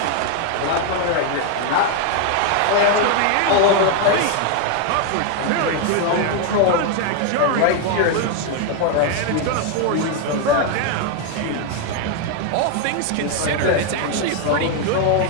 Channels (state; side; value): different; both; correlation 0.00